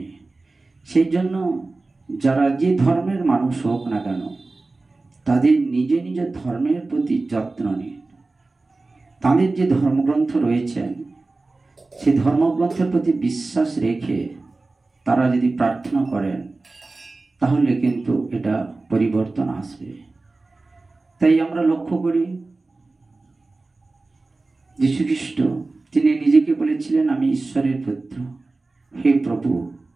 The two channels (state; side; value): quieter; left; 3.4 dB